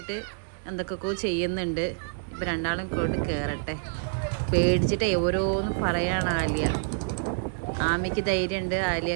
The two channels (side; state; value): left; silent; 60 dB below the other